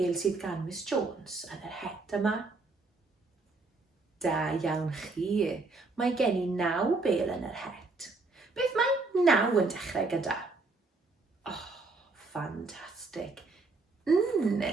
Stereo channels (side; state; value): left; quieter; 3.6 dB